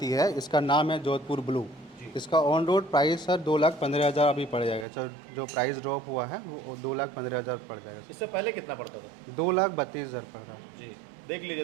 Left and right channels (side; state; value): left; drops out; at 4.9 s